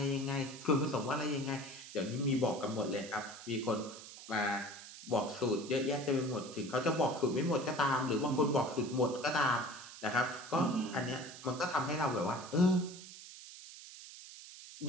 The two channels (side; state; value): right; noise; hiss, 15 dB below the sound